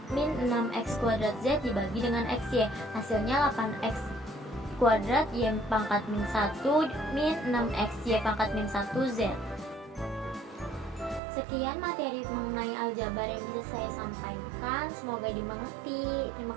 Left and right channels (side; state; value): left; drops out; at 11.2 s